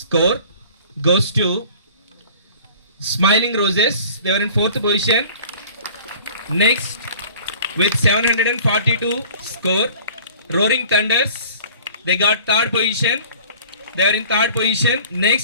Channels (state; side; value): inverted; both; correlation -0.47